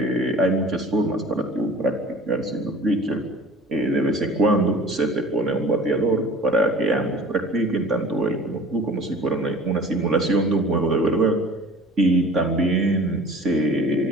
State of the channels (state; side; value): normal; both; correlation 0.44